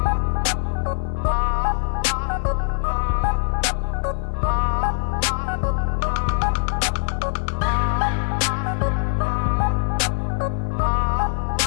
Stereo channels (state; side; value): silent; right; digital silence